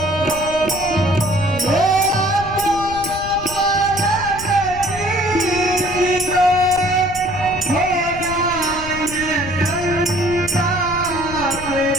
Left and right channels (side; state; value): left; noise; rumble, 13 dB below the sound